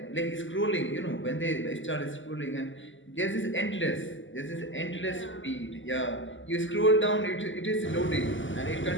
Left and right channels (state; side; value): late; right; 0.55 ms